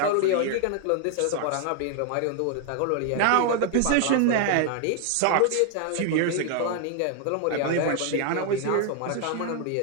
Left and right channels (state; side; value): different; both; correlation 0.00